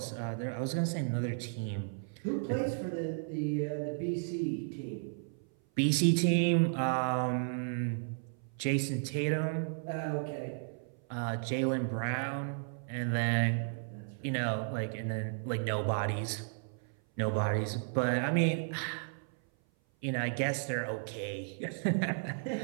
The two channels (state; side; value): silent; left; 55 dB below the other